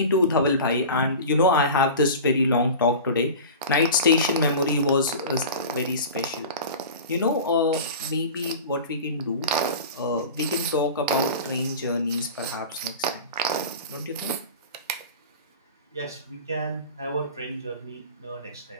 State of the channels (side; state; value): both; inverted; correlation -0.34